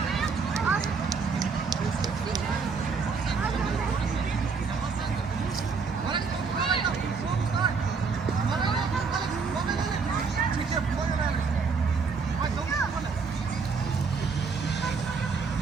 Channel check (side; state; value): left; quieter; 5.1 dB